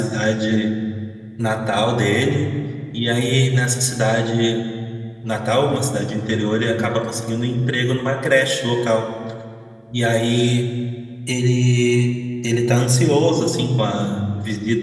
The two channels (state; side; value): identical; both; correlation 1.00